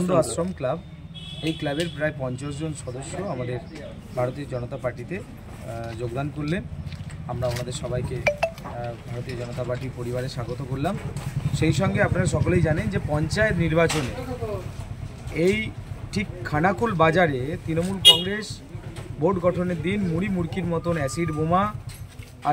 আশ্রম ক্লাব। এই ক্লাবের প্রায় 50 জন সদস্য আমাদের ভারতীয় জনতা পার্টিতে যোগদান করলেন। আমরা ওনাদের সবাইকে ভারতীয় জনতা পার্টি পরিবারে স্বাগত করলাম। সেই সঙ্গে আপনারা সকলেই জানেন যে পঞ্চায়েত নির্বাচনে এই ঠিক খানাকুল বাজারে তৃণমূল কংগ্রেস বোর্ড গঠনের দিন মুড়ি মুড়কির মতন অ্যাসিড বোমা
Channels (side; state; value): both; identical; correlation 1.00